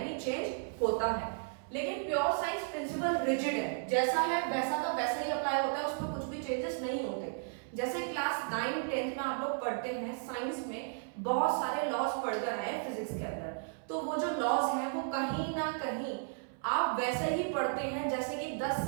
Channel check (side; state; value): left; silent; 55 dB below the other